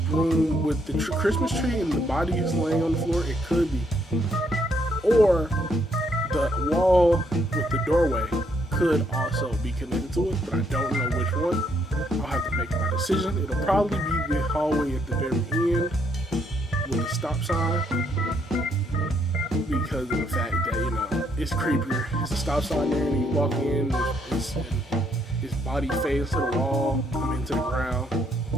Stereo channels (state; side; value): normal; both; correlation 0.72